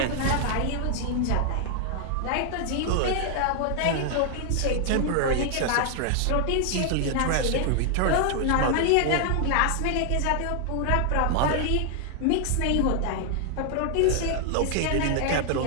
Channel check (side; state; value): both; different; correlation 0.00